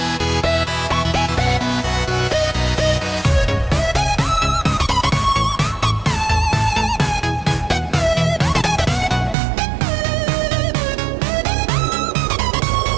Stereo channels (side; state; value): left; drops out; at 9.3 s